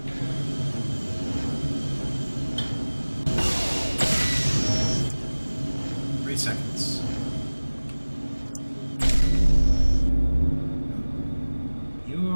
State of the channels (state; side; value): inverted; both; correlation -1.00